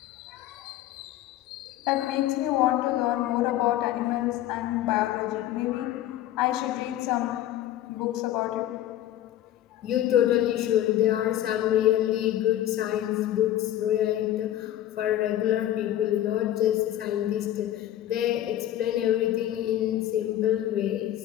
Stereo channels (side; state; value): right; quieter; 12.8 dB